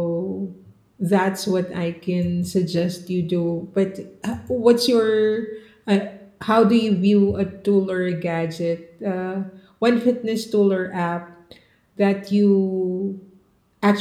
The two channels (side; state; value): both; identical; correlation 1.00